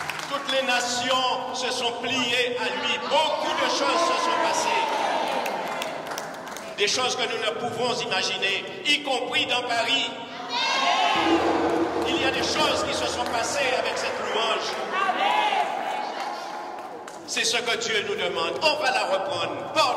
Toutes les nations se sont pliées à lui. Beaucoup de choses se sont passées. Des choses que nous ne pouvons imaginer, y compris dans Paris. Il y a des choses qui se sont passées avec cette louange. C'est ce que Dieu nous demande. On va la reprendre.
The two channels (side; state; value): both; identical; correlation 1.00